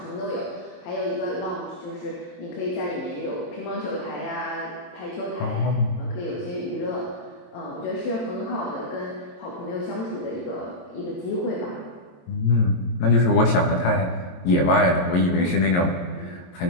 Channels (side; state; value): right; late; 22 ms